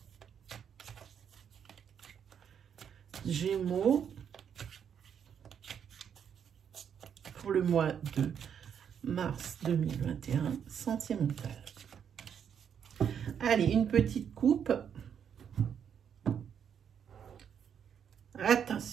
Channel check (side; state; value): left; quieter; 8.1 dB